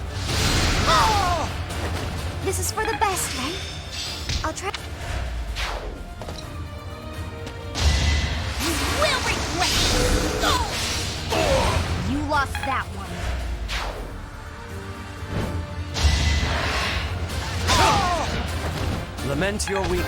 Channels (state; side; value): identical; both; correlation 1.00